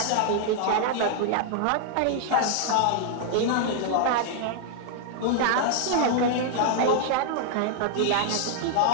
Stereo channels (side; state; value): both; different; correlation 0.00